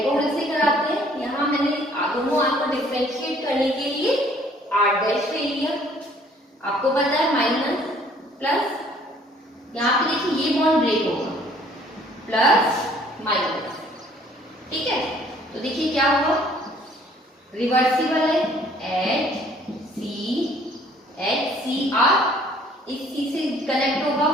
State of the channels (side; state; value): both; normal; correlation 0.58